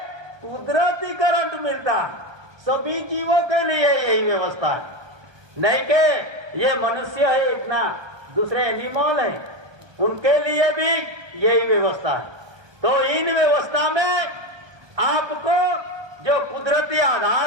कुदरती करंट मिलता है। सभी जीवों के लिए यही व्यवस्था है, नहीं कि ये मनुष्य है इतना, दूसरे एनिमल है उनके लिए भी यही व्यवस्था है। तो इन व्यवस्था में आपको जो कुदरती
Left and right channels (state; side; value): late; left; 1.2 ms